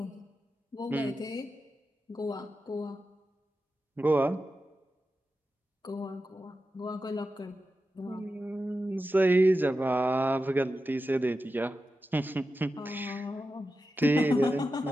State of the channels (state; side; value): normal; both; correlation 0.91